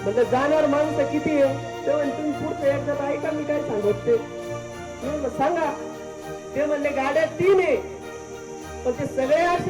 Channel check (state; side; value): identical; both; correlation 1.00